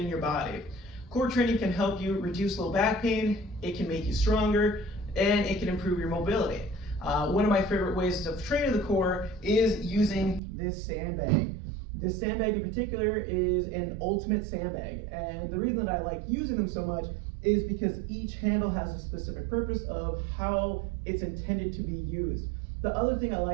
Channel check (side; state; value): left; drops out; at 10.4 s